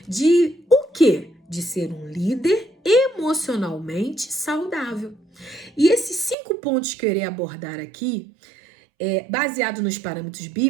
De o quê? De ser um líder emocionalmente saudável. E esses 5 pontos que eu irei abordar aqui, baseado nos parâmetros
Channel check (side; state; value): left; drops out; at 6.4 s